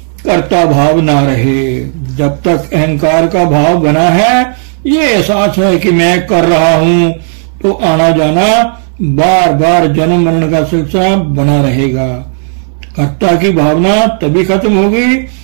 कर्ता भाव ना रहे। जब तक अहंकार का भाव बना है, ये एहसास है कि मैं कर रहा हूँ, तो आना जाना बार बार जन्म मरण का सिलसिला बना रहेगा। कर्ता की भावना तभी खत्म होगी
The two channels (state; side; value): silent; left; 61 dB below the other